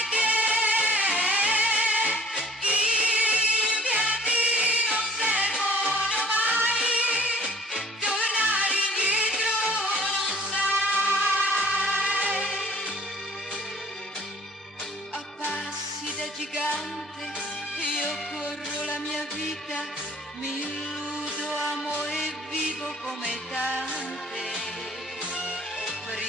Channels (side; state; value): both; normal; correlation 0.53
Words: Gigante, io corro la mia vita, mi illudo, amo e vivo come tante.